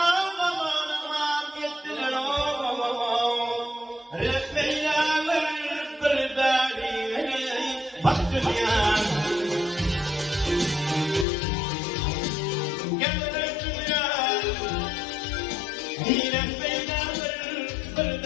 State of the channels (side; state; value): right; drops out; at 11.2 s